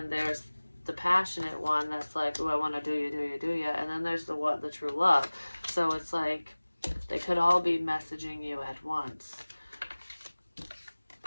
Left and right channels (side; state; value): both; inverted; correlation -1.00